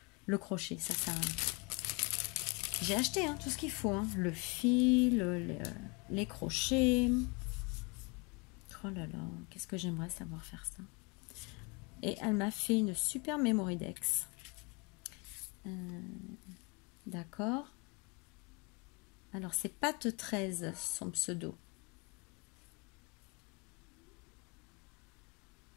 le crochet. Ça j'ai acheté tout ce qu'il faut. Le fil, les crochets. Oh là là, qu'est-ce que j'aimerais savoir faire ça. Et elle m'a fait une super Memory Dex. D'accord. Alors c'est Pat 13 son pseudo.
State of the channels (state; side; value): quieter; right; 30.2 dB